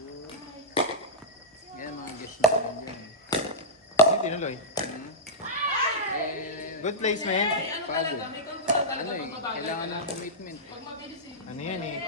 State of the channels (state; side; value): normal; both; correlation -0.11